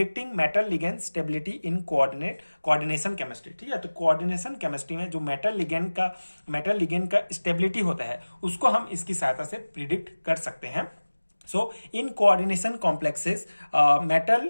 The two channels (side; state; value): both; inverted; correlation -1.00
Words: metal ligand stability in coordination chemistry. ठीक है, तो कोऑर्डिनेशन केमिस्ट्री में जो मेटल लिगेंड का स्टेबिलिटी होता है उसको हम इसकी सहायता से प्रिडिक्ट कर सकते हैं। So in coordination complexes